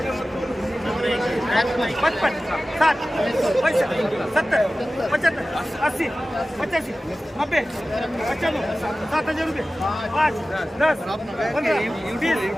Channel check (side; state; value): both; normal; correlation 0.96